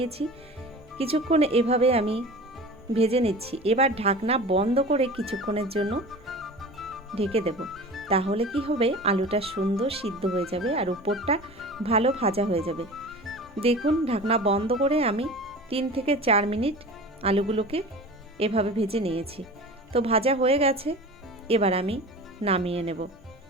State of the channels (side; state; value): both; normal; correlation 0.36